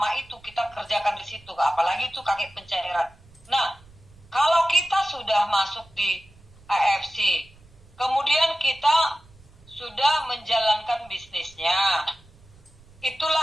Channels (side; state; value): right; noise; rumble, 26 dB below the sound